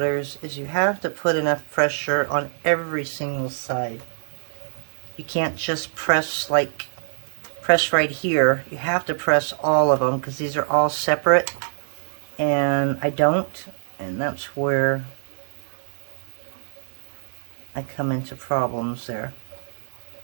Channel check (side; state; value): left; silent; digital silence